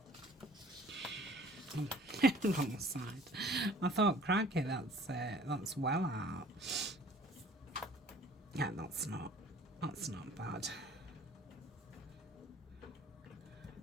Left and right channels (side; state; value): both; normal; correlation 0.51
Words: Wrong side. I thought, crikey, that's well out. Yeah, that's not bad.